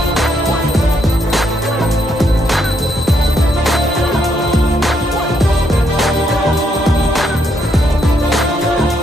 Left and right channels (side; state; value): both; normal; correlation 0.75